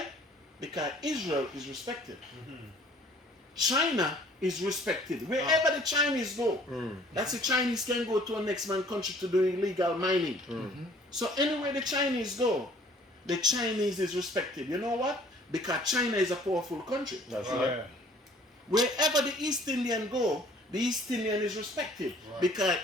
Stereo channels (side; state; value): both; normal; correlation 0.55